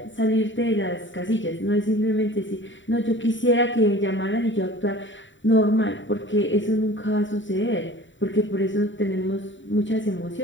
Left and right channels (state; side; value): late; right; 0.55 ms